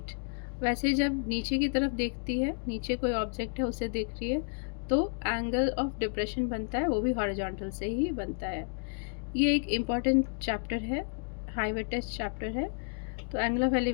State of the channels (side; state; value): right; silent; 56 dB below the other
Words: वैसे जब नीचे की तरफ देखती है, नीचे कोई ऑब्जेक्ट है उसे देख रही है, तो एंगल ऑफ डिप्रेशन बनता है, वो भी हॉरिजॉन्टल से ही बनता है। ये एक इम्पॉर्टेंट चैप्टर है, हाईवे टेस्ट चैप्टर है। तो एंगल ऑफ